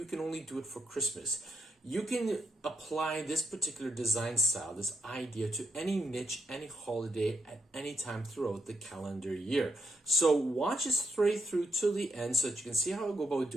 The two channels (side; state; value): both; normal; correlation 0.78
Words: can only do it for Christmas. You can apply this particular design style, this idea, to any niche, any holiday, at any time throughout the calendar year. So watch it straight through to the end so that you can see how I go about